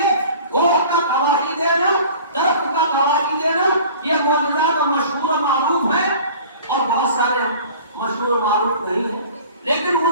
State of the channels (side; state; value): both; inverted; correlation -0.44